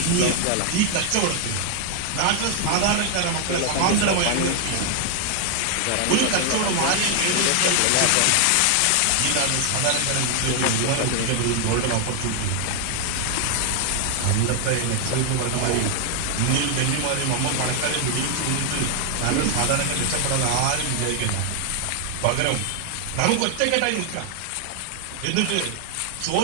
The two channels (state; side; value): different; both; correlation 0.00